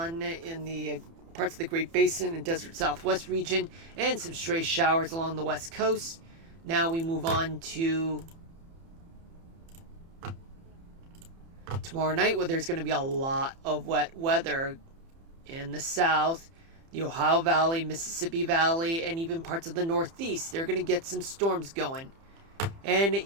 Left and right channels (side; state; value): left; late; 30 ms